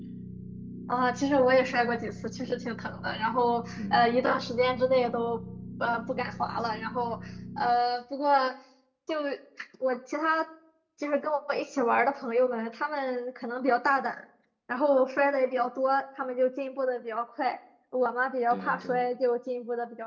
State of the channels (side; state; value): both; identical; correlation 1.00